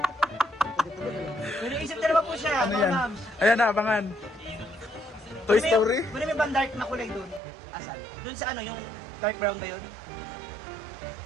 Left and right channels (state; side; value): drops out; left; at 7.4 s